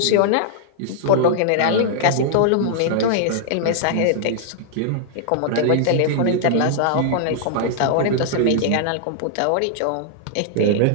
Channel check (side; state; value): both; different; correlation -0.01